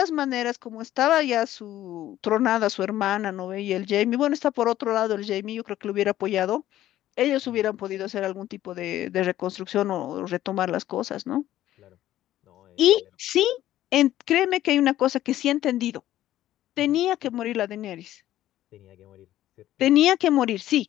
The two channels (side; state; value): right; quieter; 13.5 dB